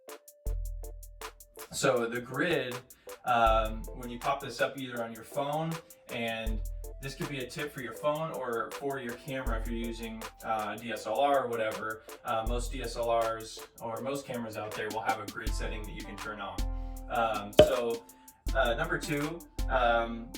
So the grid, when you pop this up either on your phone, and this could be a tip for your phone or for your camera if you're using DSLR or whatever. Most DSLRs or most cameras out there will have a grid setting that you can turn on. Number two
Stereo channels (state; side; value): identical; both; correlation 1.00